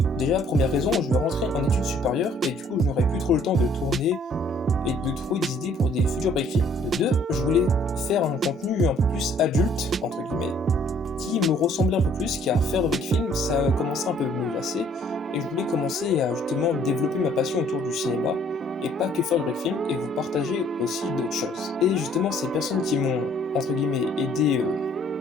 Déjà, première raison, je vais rentrer en études supérieures et du coup je n'aurai plus trop le temps de tourner et de trouver des idées pour des futurs break films. De deux, je voulais faire un contenu un peu plus adulte, entre guillemets, qui me ressemblait un peu plus, car faire de break film, ça commençait un peu à me lasser. Et je voulais commencer à justement développer ma passion autour du cinéma, et pas que faire du break film, et vous partager aussi d'autres choses. Et justement, ces personnes qui m'ont, entre guillemets, aidé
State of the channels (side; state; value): both; normal; correlation 0.60